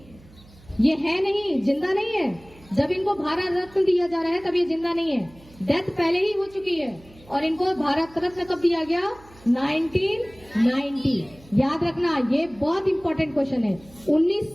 ये है नहीं, जिंदा नहीं है। जब इनको भारत रत्न दिया जा रहा है तब ये जिंदा नहीं है, डेथ पहले ही हो चुकी है। और इनको भारत रत्न कब दिया गया? 1990। याद रखना, ये बहुत इंपॉर्टेंट क्वेश्चन है।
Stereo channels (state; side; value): noise; right; hum, 24 dB below the sound